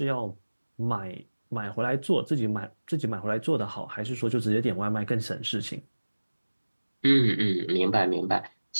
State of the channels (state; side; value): inverted; both; correlation -1.00